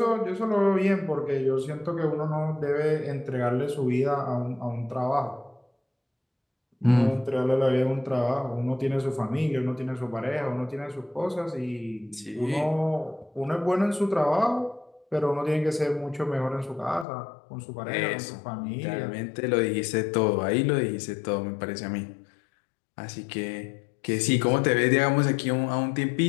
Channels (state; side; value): drops out; right; at 17.1 s